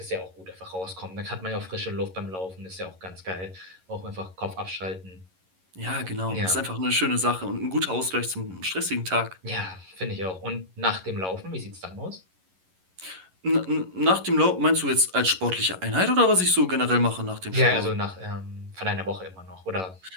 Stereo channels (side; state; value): left; late; 11 ms